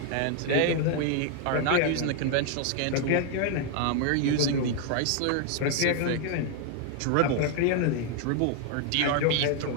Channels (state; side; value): different; both; correlation 0.00